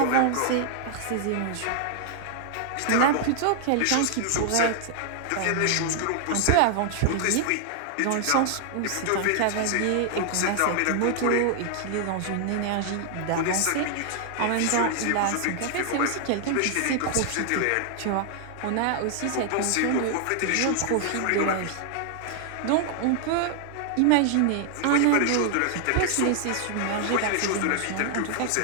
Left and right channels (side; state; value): both; different; correlation 0.00